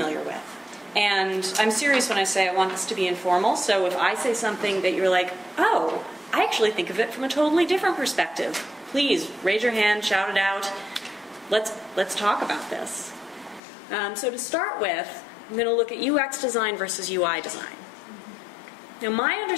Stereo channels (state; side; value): drops out; right; at 13.6 s